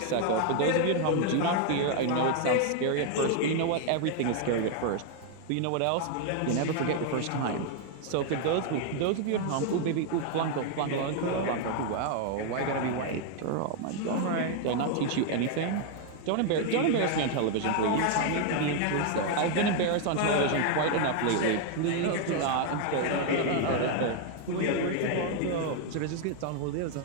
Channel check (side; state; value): both; different; correlation 0.00